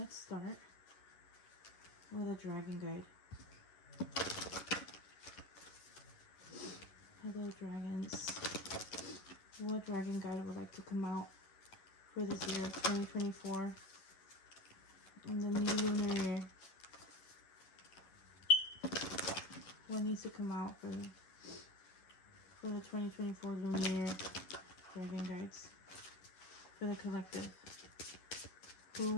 start with a dragon guide. Hello dragons. What dragon guide would like to come out for this year of 2024 in the new lunar year? What needs to come out for the 2024 lunar year, dragon guides, for the collective? Who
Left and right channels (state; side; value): late; right; 11 ms